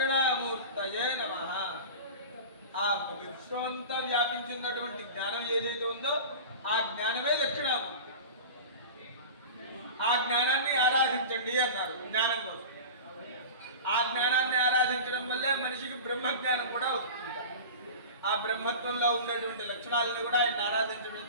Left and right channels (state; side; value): inverted; both; correlation -0.32